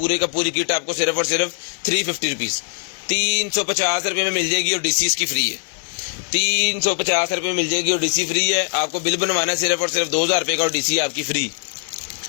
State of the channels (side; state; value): right; silent; digital silence